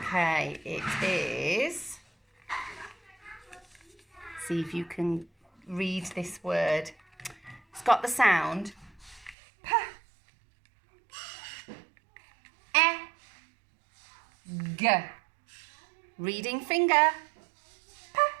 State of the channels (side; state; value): left; drops out; at 9.3 s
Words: it is. See if you can read this word. It's got the sound P, E, G. Reading finger. P,